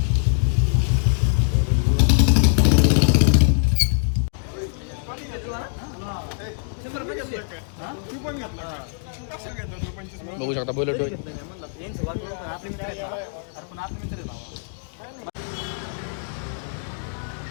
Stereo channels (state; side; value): silent; right; digital silence